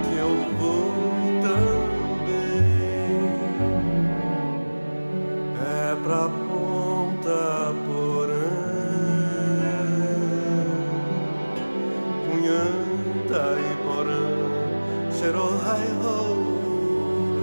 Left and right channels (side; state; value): both; inverted; correlation -1.00